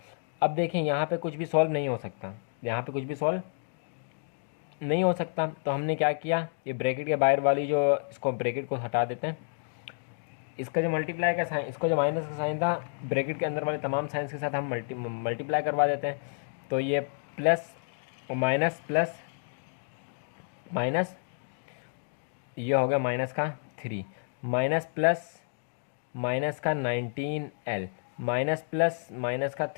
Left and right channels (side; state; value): right; silent; digital silence